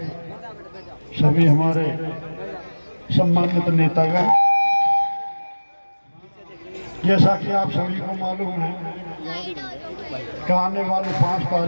सभी हमारे सम्मानित नेतागण, जैसा कि आप सभी को मालूम है कि आने वाली 5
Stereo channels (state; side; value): inverted; both; correlation -1.00